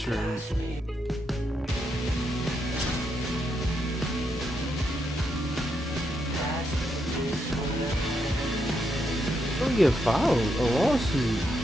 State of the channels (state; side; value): normal; both; correlation 0.81